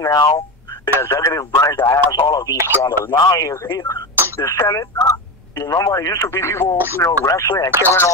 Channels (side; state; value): both; normal; correlation 0.20